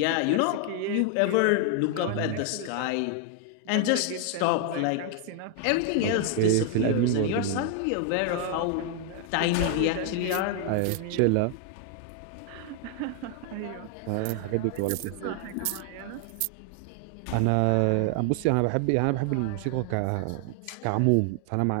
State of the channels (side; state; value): both; different; correlation 0.00